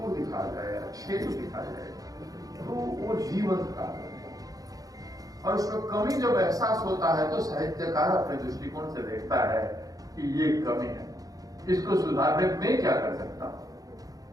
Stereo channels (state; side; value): late; left; 0.17 ms